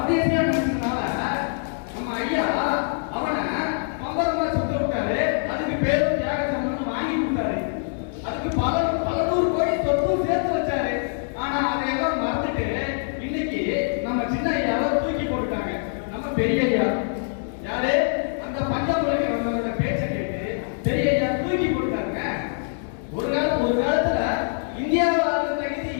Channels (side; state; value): right; silent; digital silence